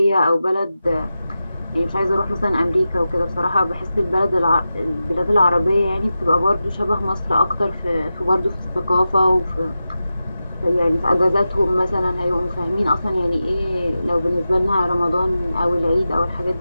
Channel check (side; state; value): both; inverted; correlation -0.92